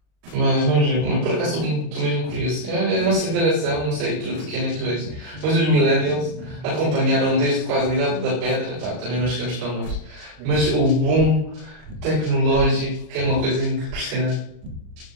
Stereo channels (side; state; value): left; late; 40 ms